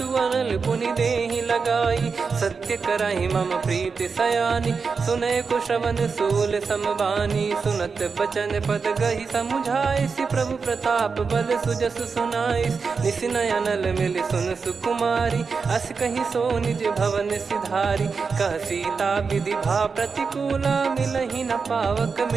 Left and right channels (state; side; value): quieter; left; 5.1 dB